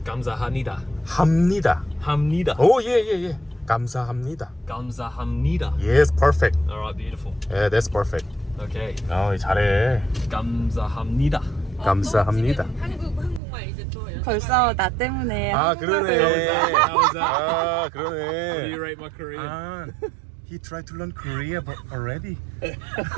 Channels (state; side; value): drops out; left; at 13.4 s